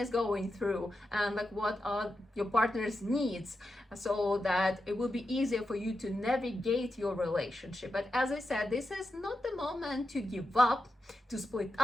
going through and like what are your partner's needs, so that it will be easier for you to navigate your relationship. But as I said, this is not the moment to give up, to split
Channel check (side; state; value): both; normal; correlation 0.88